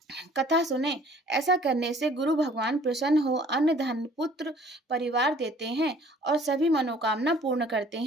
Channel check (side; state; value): both; normal; correlation 0.54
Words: कथा सुने। ऐसा करने से गुरु भगवान प्रसन्न हो अन्न धन पुत्र परिवार देते हैं और सभी मनोकामना पूर्ण करते